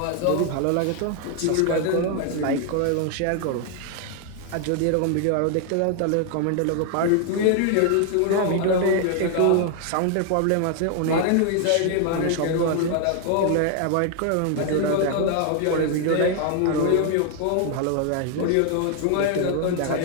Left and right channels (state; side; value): different; both; correlation 0.00